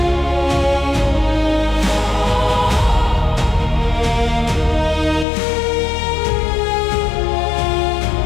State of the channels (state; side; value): drops out; right; at 5.2 s